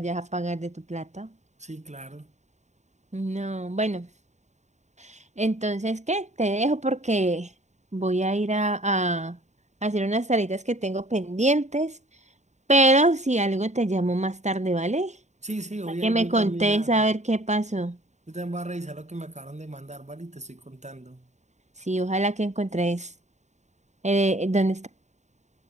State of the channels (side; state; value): left; late; 0.34 ms